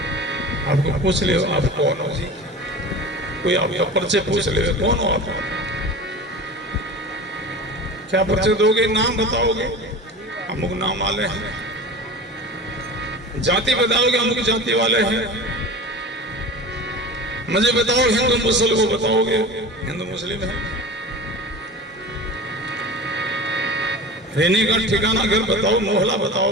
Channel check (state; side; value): normal; both; correlation 0.34